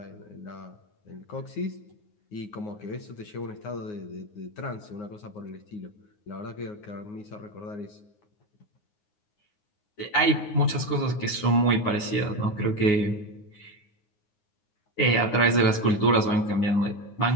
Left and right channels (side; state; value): right; late; 9.6 ms